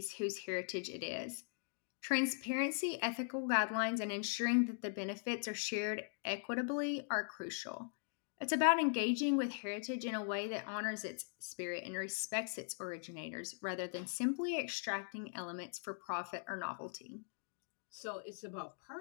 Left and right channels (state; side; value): silent; right; digital silence